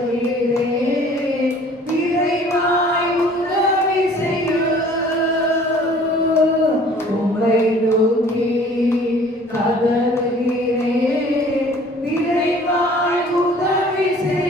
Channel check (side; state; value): both; normal; correlation 0.51